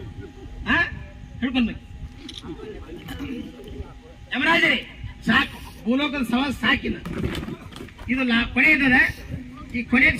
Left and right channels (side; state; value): both; identical; correlation 1.00